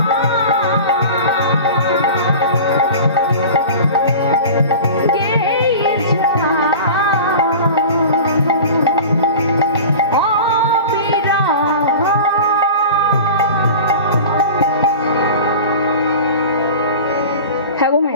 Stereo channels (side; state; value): both; inverted; correlation -0.35